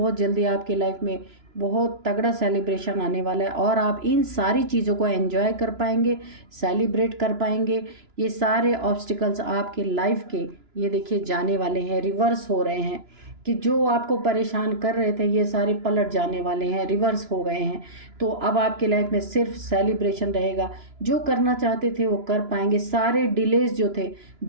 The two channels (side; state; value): left; late; 2.9 ms